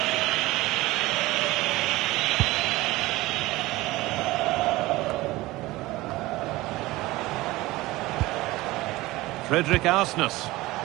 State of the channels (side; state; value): left; quieter; 19.2 dB